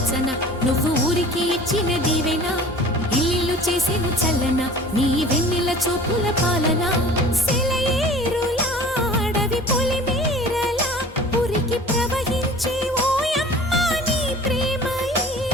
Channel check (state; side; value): normal; both; correlation 0.43